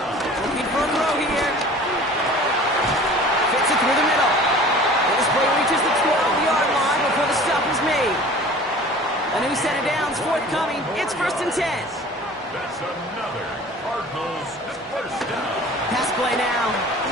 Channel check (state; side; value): normal; both; correlation 0.44